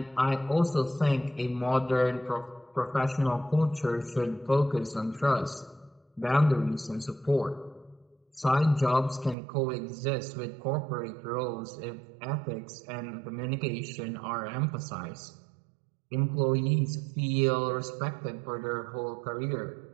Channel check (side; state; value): left; drops out; at 9.3 s